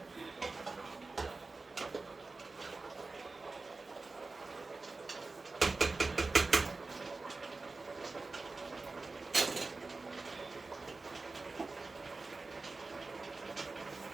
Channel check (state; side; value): quieter; left; 3.7 dB